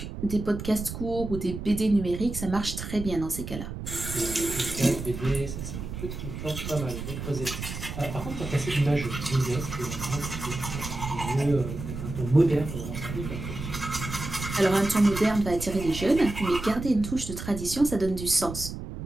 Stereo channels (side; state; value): right; noise; rumble, 8 dB below the sound